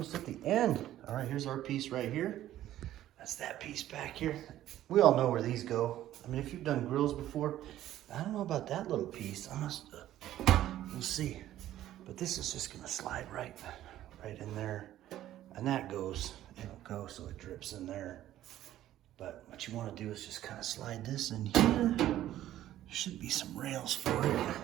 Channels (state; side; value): quieter; left; 13.1 dB